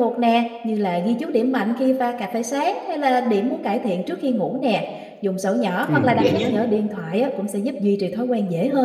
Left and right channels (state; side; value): identical; both; correlation 1.00